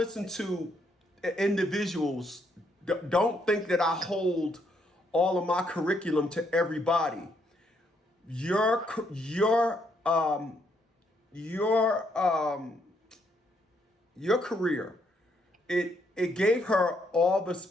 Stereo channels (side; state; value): both; normal; correlation 0.73